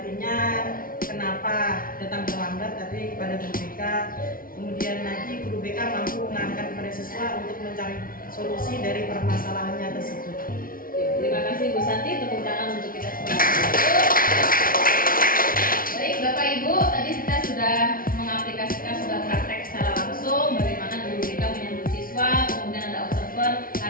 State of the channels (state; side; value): late; right; 0.42 ms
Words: kenapa datang terlambat tadi kepada guru BK. Kemudian lagi guru BK mampu mengarahkan kepada siswa untuk mencari solusi dari permasalahannya tersebut. Terima kasih Bu Santi, tepuk tangan untuk kita semua. Baik Bapak Ibu, tadi kita sudah mengaplikasikan, sudah praktek secara langsung bagaimana guru BK menyambut siswa, kemudian ada observer.